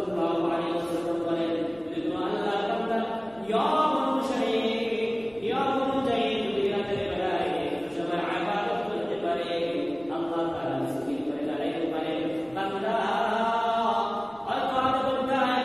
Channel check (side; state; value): right; noise; rumble, 27 dB below the sound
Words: আলাইহি ওয়াসাল্লাম বলেন, যদি কোনো আল্লাহর বান্দা নিয়ম অনুসারে, নিয়ম অনুযায়ী যদি রাতের বেলায় সবাই ইবাদত করতে পারে, আল্লাহ তাআলা সুবহানাহু করে দাঁড়াইতে পারে, বান্দা হয়তো আধা ঘন্টা